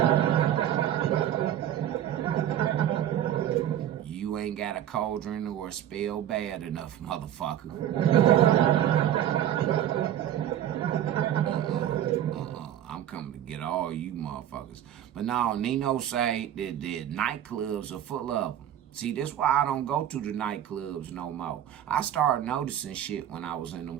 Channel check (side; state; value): left; quieter; 11.0 dB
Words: You ain't got a cauldron or a spell bad enough, motherfucker. I'm coming to get all you motherfuckers. But no, Nino say that the nightclubs are full of them. See, this why I don't go to the nightclubs no more. I started noticing shit when I was in